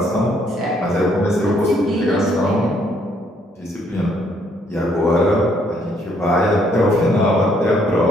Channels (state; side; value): normal; both; correlation 0.68